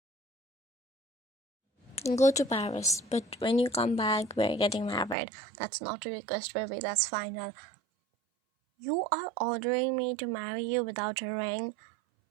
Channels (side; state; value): left; drops out; at 5.2 s